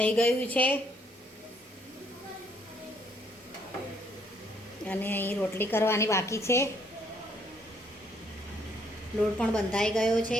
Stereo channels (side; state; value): both; normal; correlation 0.68